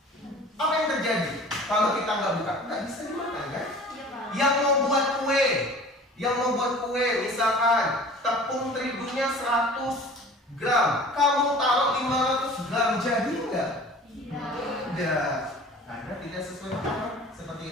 Apa yang terjadi kalau kita nggak buka? Nggak bisa dimakan kan? Yang mau buat kue, misalkan tepung terigunya 100 gram, kamu taruh 500 gram, jadi nggak? Tidak. Karena tidak sesuai dengan seperti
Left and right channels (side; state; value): both; normal; correlation 0.44